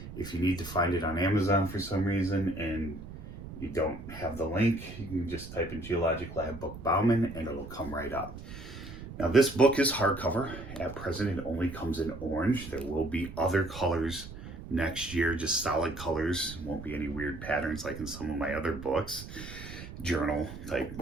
If you need to find it on Amazon for some reason and you don't have the link, you can just type in geologic lab book Bauman and it'll come right up. Now this book is hardcover. At present it only comes in orange. There will be other colors next year, just solid colors. Won't be any weird patterns like in some of my other books, journal type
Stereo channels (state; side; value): noise; right; rumble, 12 dB below the sound